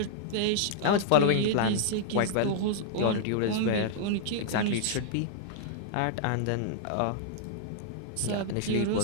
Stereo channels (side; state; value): both; different; correlation -0.01